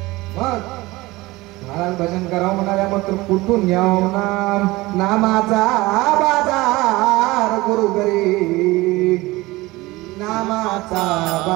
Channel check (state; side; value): quieter; left; 20.5 dB